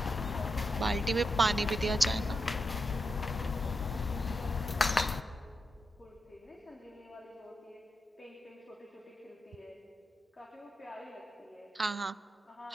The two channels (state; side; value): normal; both; correlation 0.86